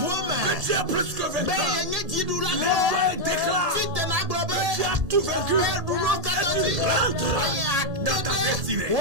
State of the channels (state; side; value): late; left; 1.7 ms